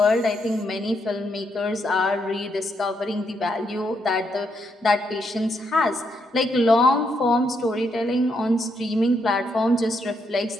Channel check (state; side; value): normal; both; correlation 0.78